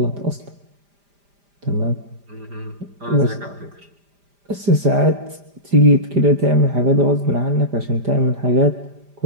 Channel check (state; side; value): late; left; 5.0 ms